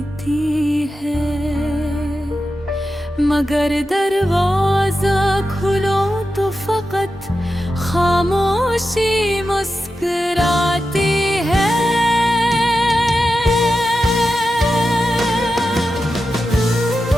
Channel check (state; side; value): normal; both; correlation 0.90